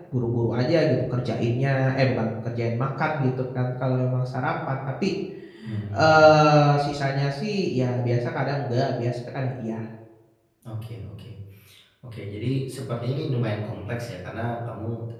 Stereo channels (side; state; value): both; identical; correlation 1.00